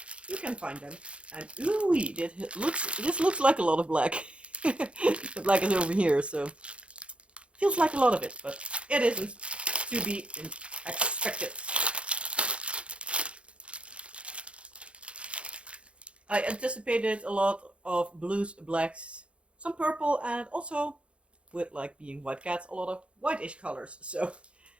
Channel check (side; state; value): left; late; 0.059 ms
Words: you can find them. And ooh, this looks like a lot of black. The black is over here, so feels like a lot of it, but it isn't to be expected. I anticipated a lot of blues, blacks, some purple, and also, with like being white cats, a lot of whitish colors. So